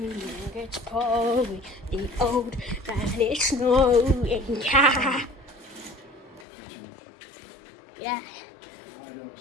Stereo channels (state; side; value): drops out; right; at 6.5 s